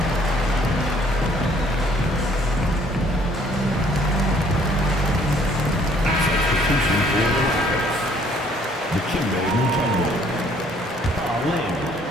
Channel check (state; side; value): normal; both; correlation 0.61